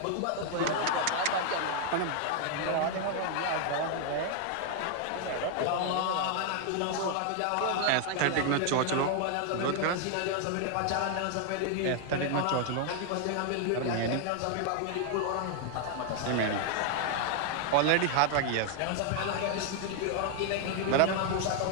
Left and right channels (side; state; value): both; different; correlation 0.00